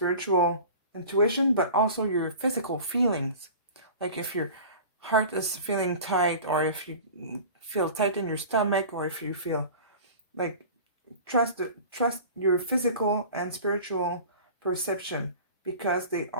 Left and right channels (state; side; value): inverted; both; correlation -0.39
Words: intuition, but also your physical feelings. Like if your heart is feeling tight, or if you feel tight in your stomach, or if you feel like, trust your physical and spiritual perception, because they